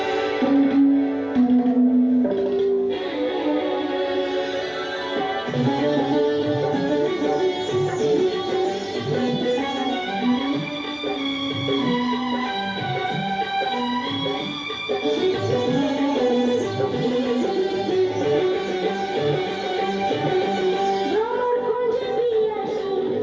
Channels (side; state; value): right; noise; hum, 29 dB below the sound